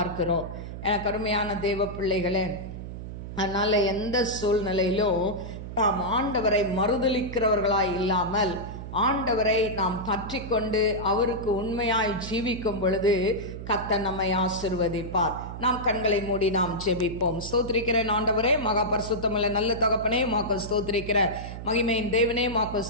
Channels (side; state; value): right; noise; hum, 9 dB below the sound